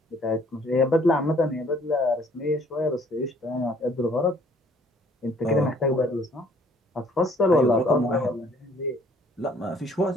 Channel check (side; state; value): both; normal; correlation 0.59